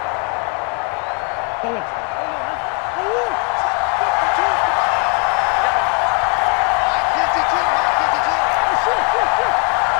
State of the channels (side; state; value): right; quieter; 33.6 dB